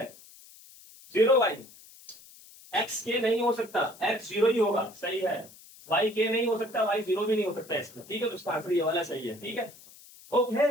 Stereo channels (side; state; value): left; noise; hiss, 22 dB below the sound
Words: 0 वाई, एक्स के नहीं हो सकता, एक्स 0 ही होगा, सही है। वाई के नहीं हो सकता, वाई 0 भी नहीं हो सकता इसमें, ठीक है। तो इसका आंसर ये वाला सही है, ठीक है।